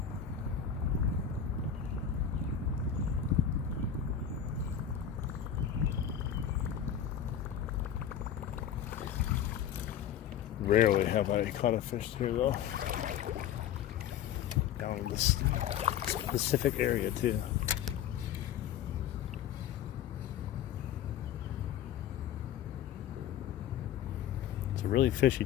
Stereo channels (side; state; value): right; quieter; 9.3 dB